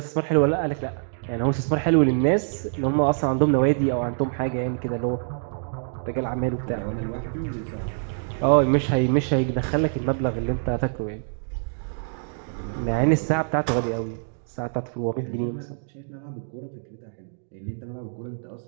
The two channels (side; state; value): left; silent; digital silence